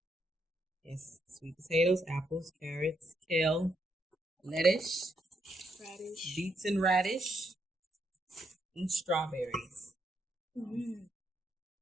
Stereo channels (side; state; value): both; normal; correlation 0.77